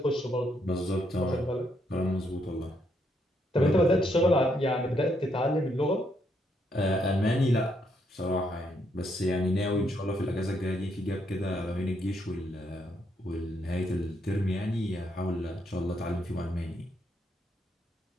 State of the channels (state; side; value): normal; both; correlation 0.75